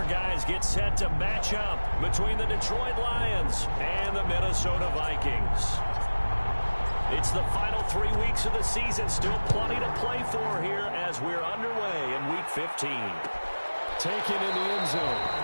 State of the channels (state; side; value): inverted; both; correlation -1.00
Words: guys get set to match up between the Detroit Lions and the Minnesota Vikings. It's the final 3 weeks of the season. Still plenty to play for here as we're underway in Week 15. Taken in the end zone.